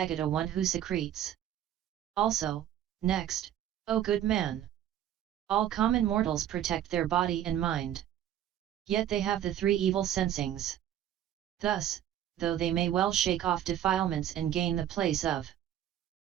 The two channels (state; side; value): quieter; left; 11.2 dB